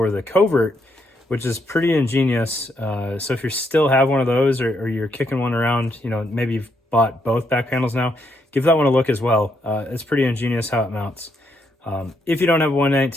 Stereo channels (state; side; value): normal; both; correlation 0.77